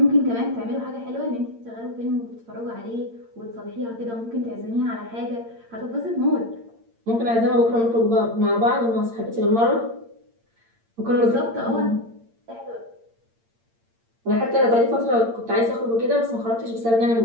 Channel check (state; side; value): late; left; 8.7 ms